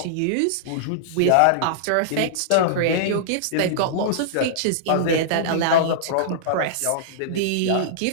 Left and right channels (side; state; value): both; different; correlation -0.02